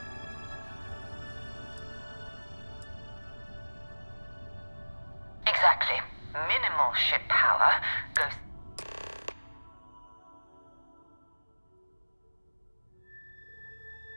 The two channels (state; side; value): inverted; both; correlation -1.00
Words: Exactly. Minimal ship power goes...